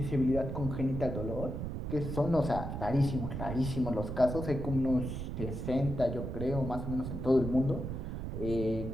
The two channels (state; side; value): noise; right; rumble, 5 dB below the sound